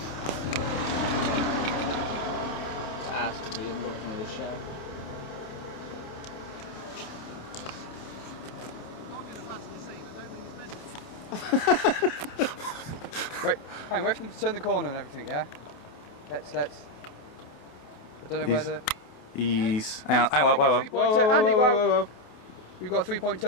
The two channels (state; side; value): late; right; 28 ms